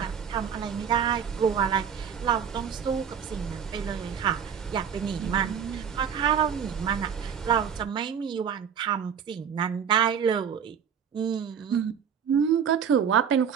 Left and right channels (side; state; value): left; quieter; 7.6 dB